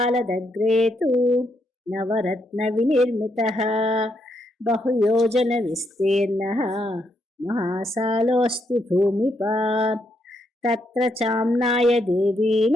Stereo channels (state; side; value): normal; both; correlation 0.78